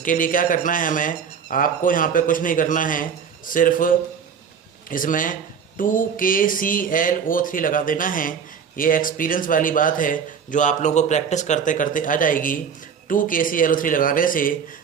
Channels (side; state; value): left; quieter; 7.0 dB